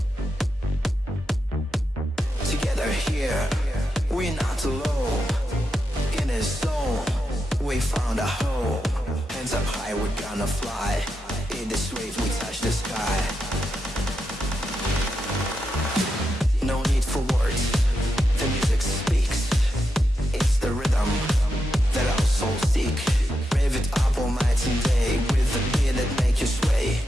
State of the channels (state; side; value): normal; both; correlation 0.86